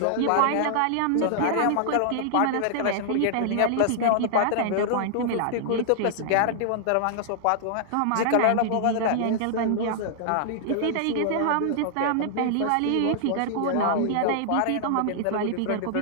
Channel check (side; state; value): both; different; correlation -0.01